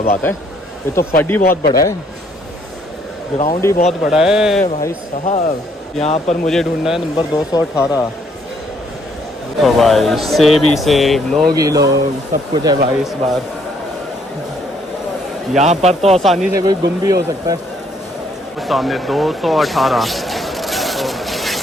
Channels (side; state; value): both; normal; correlation 0.67